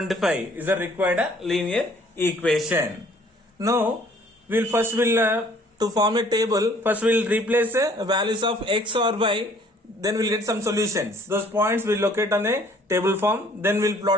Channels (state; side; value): normal; both; correlation 0.58